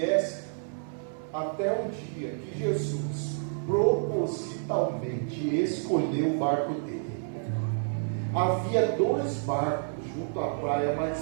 até um dia que Jesus propositalmente escolheu o barco dele. Havia 2 barcos junto à praia,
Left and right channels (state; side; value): silent; left; 58 dB below the other